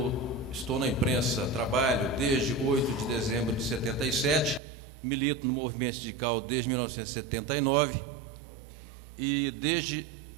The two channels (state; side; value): drops out; left; at 4.6 s